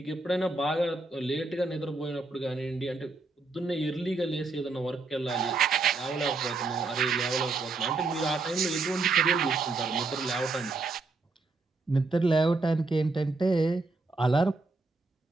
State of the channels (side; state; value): left; quieter; 3.6 dB